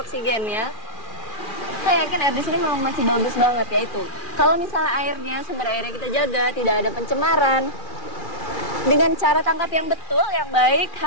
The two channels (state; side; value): late; right; 2.4 ms